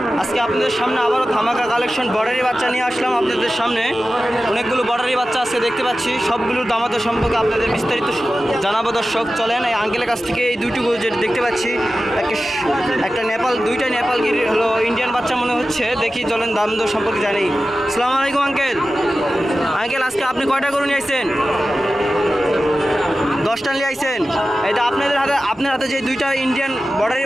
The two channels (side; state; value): both; normal; correlation 0.94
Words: আজকে আপনাদের সামনে আবারও ধামাকা কালেকশন বর্ডারি বাচ্চা নিয়ে আসলাম আপনাদের সামনে। অনেকগুলো বর্ডারি বাচ্চা আজকে দেখতে পাচ্ছি, সবগুলোর দামাদর সম্পর্কে আপনাদের বিস্তারিত জানাবো দর্শক। চলেন এই আঙ্কেলের কাছ থেকে এই দুইটুকু যেটা দেখতে পাচ্ছি, একটা নেপাল, দুইটা নেপাল গির হলো ইন্ডিয়ান বাচ্চা মনে হচ্ছে। দেখি চলেন দামদর সম্পর্কে জানি। আসসালামু আলাইকুম আঙ্কেল। আঙ্কেল আজকে আপনি কয়টা গরু নিয়ে আসছেন? 10টা নিয়ে আইছেন। এটা আপনার হাতে যে দুইটা ইন্ডিয়ান বর্ডারি